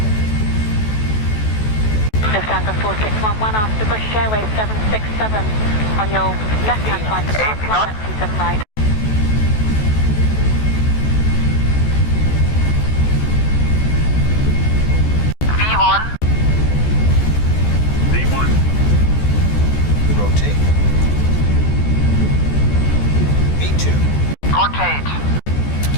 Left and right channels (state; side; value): late; right; 14 ms